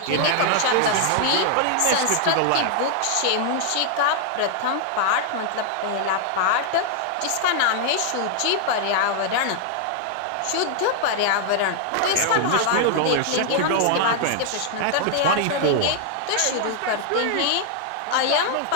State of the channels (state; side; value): different; both; correlation 0.00